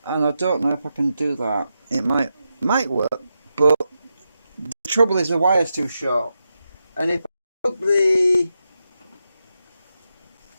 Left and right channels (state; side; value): inverted; both; correlation -0.87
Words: and I don't know if I can do that. It might work, but the trouble is the wire's too short. And if I plug the,